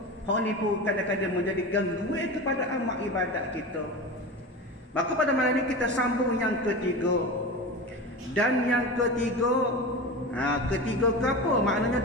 Hal ni pun kadang-kadang menjadi gangguan kepada amal ibadat kita. Maka pada malam ini kita sambung yang ketiga. Dan yang ketiga, ketiga ke apa? Maknanya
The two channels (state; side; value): normal; both; correlation 0.28